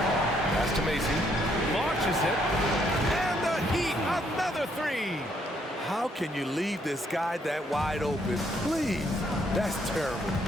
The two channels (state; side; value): normal; both; correlation 0.71